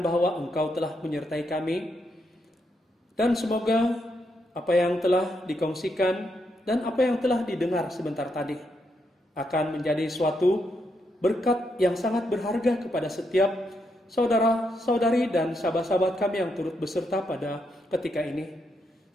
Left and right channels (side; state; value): both; normal; correlation 0.80